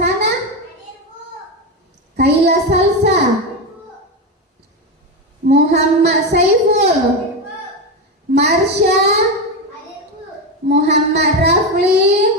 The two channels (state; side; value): normal; both; correlation 0.14